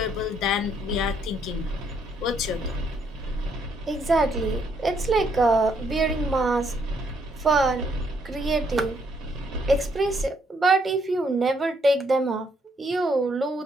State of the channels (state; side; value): normal; both; correlation 0.71